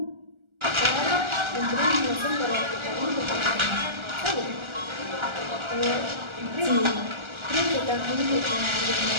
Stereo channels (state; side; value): late; left; 1.4 ms